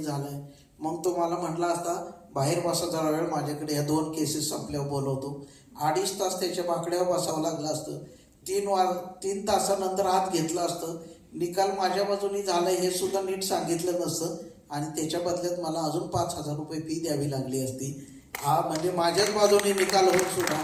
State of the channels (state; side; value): identical; both; correlation 1.00